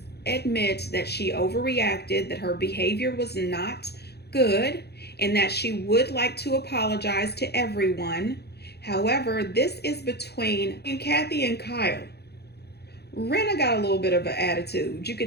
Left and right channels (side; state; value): right; late; 0.48 ms